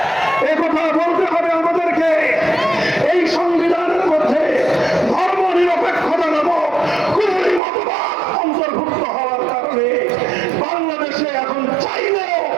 এই কথা বলতে হবে আমাদেরকে। এই সংবিধানের মধ্যে ধর্ম নিরপেক্ষতা নামক কুফরি মতবাদ অন্তর্ভুক্ত হওয়ার কারণে বাংলাদেশে এখন চাইলেও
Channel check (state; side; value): drops out; left; at 7.6 s